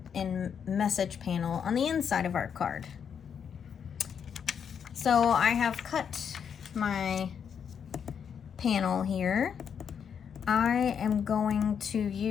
and message panel on the inside of our card. So I have cut my panel here. I am going to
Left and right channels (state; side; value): quieter; right; 7.5 dB